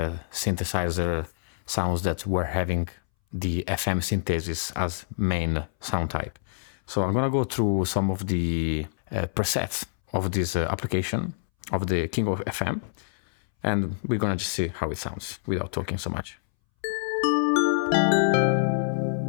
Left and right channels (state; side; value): silent; right; 61 dB below the other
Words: synthesizer sounds that were having the FM synthesis as main sound type. So I'm gonna go through some of the presets of this application of the King of FM, and we're gonna just see how it sounds without talking so much.